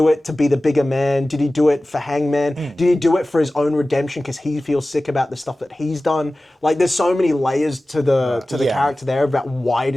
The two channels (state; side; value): normal; both; correlation 0.96